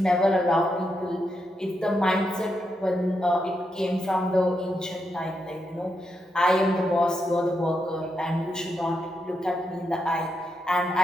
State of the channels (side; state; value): both; normal; correlation 0.83